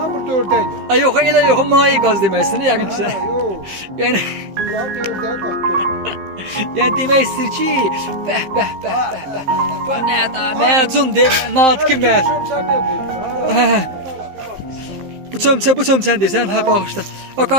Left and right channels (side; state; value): left; late; 15 ms